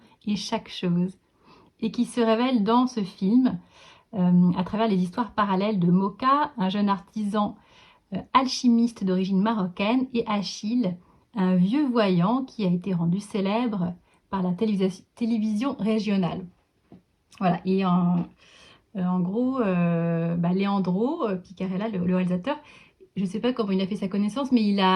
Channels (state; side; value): identical; both; correlation 1.00